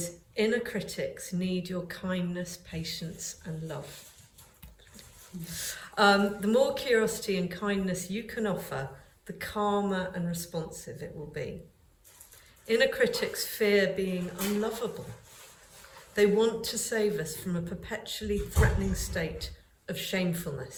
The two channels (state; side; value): identical; both; correlation 1.00